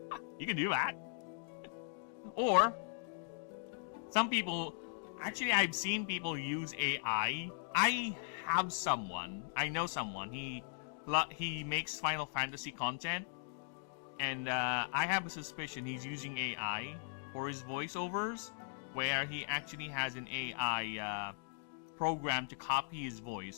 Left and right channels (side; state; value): right; silent; digital silence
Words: You can do that. Or, some people, actually I've seen people use AI. I know someone, he makes Final Fantasy content, and I have a suspicion he's using AI for his voiceovers, where he actually has an AI program to copy his